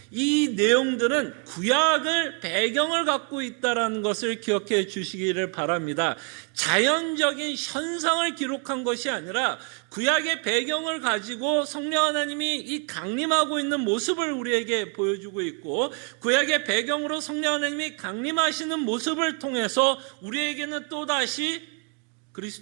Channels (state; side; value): quieter; left; 38.5 dB